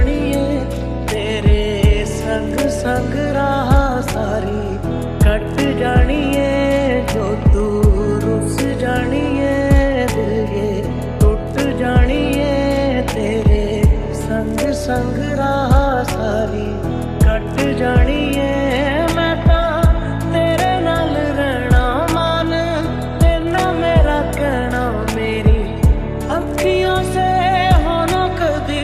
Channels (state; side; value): identical; both; correlation 1.00